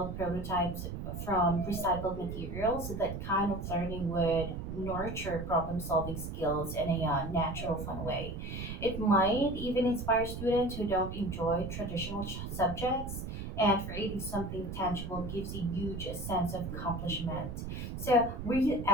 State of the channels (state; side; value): noise; right; rumble, 7 dB below the sound